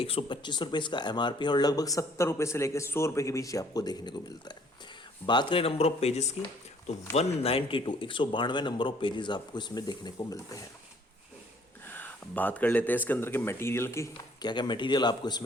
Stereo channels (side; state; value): both; normal; correlation 0.60